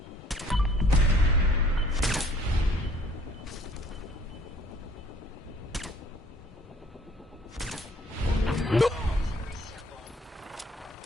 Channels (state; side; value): normal; both; correlation 0.57